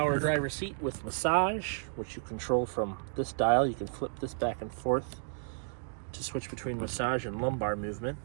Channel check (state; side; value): silent; left; digital silence